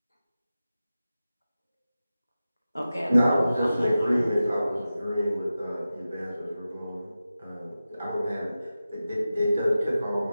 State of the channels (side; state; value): both; inverted; correlation -0.94